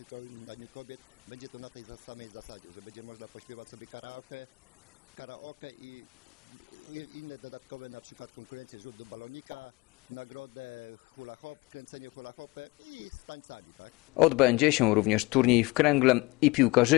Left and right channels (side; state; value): right; quieter; 23.8 dB